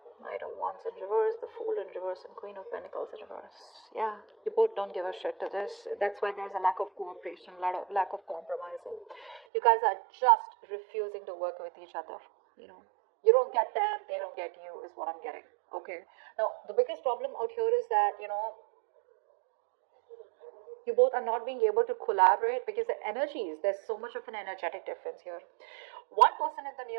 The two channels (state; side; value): drops out; left; at 9.4 s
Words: Knight of of Wands in reverse, the Fool in reverse, and Queen of Pentacles in reverse. Yeah, you both don't give a shit to this. That's why there's a lack of cooperation, lack of compromising. You guys are just refusing to work with each other. You don't get them, they don't get you, is what I'm getting. Okay. Now, the biggest problem out here is that, you both are not being able to collaborate because the energies, there's so much of an energetic difference here. One person in the